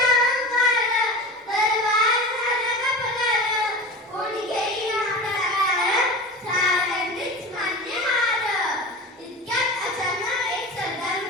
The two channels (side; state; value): both; normal; correlation 0.32